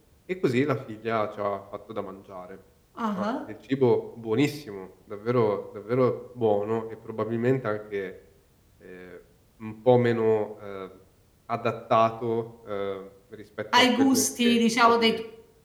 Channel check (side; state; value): both; identical; correlation 1.00